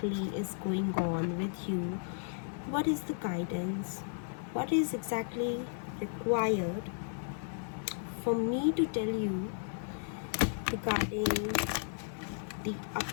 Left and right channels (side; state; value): right; silent; 55 dB below the other